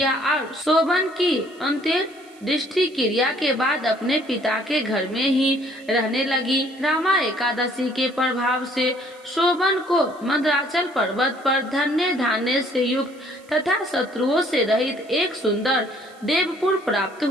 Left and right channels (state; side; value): noise; right; hiss, 28 dB below the sound